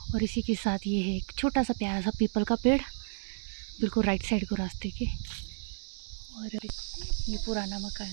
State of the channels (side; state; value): left; silent; digital silence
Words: और इसी के साथ ये है एक छोटा सा प्यारा सा पीपल का पेड़ बिल्कुल राइट साइड को रास्ते के। और ये पुराना मकान